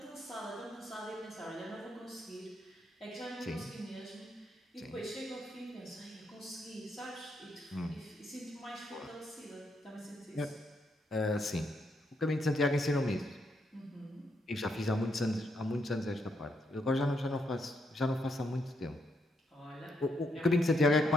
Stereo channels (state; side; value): normal; both; correlation 0.77